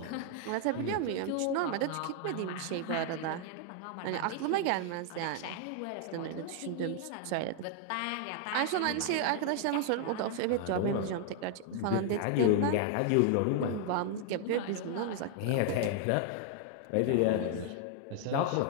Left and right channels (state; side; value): different; both; correlation 0.00